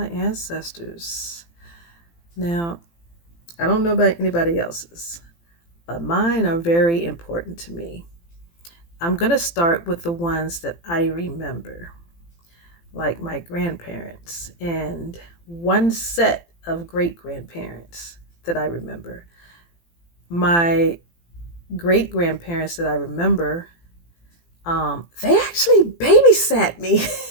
ancestors. Now, I don't know about anybody else's, but mine are very important to me. I'm going to start with the ones that I remember, like my grandparents and one set of great grandparents that I remember. My great grandparents that I remember, they actually babysat me.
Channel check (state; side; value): late; right; 18 ms